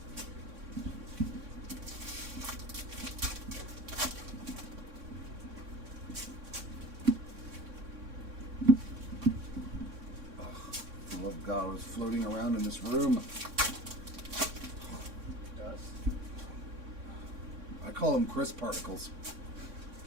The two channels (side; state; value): left; late; 3.6 ms